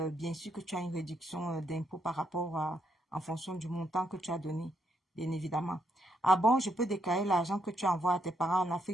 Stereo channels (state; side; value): normal; both; correlation 0.76